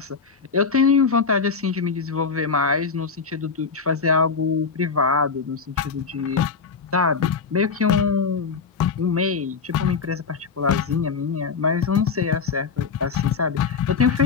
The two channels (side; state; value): right; quieter; 5.3 dB